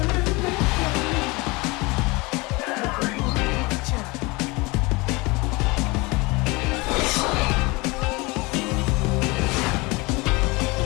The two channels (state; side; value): quieter; right; 24.9 dB